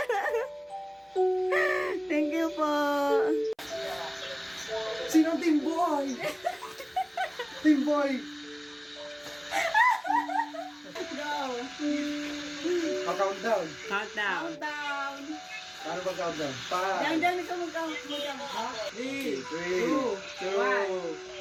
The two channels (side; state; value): both; identical; correlation 1.00